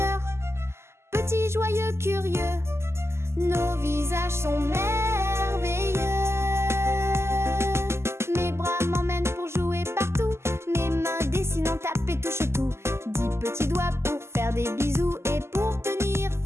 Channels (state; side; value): late; left; 0.13 ms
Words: Petits, joyeux, curieux, nos visages sont merveilleux. Mes bras m'emmènent pour jouer partout. Mes mains dessinent, tapent et touchent tout. 10 petits doigts pour faire des bisous et pour tenir